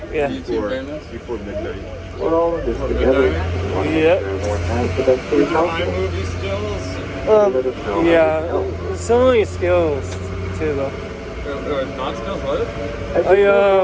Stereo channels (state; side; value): identical; both; correlation 1.00